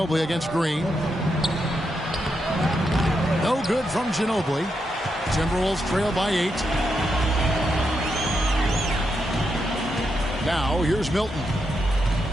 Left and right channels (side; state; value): both; normal; correlation 0.83